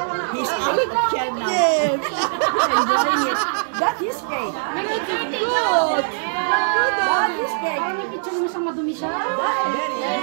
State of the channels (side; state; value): left; silent; 65 dB below the other